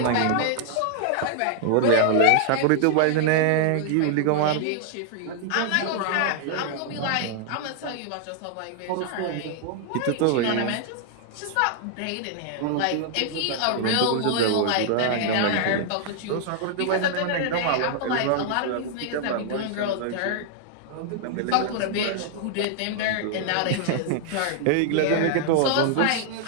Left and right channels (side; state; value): both; different; correlation 0.00